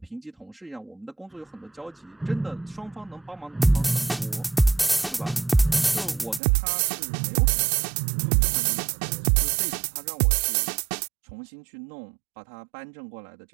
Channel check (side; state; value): left; drops out; at 6.4 s